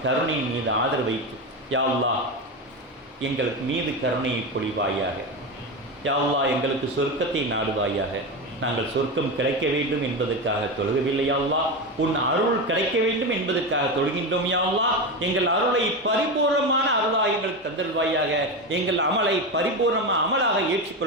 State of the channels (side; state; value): both; normal; correlation 0.17